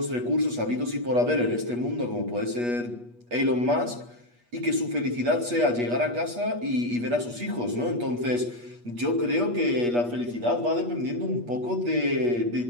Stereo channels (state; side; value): late; left; 8.3 ms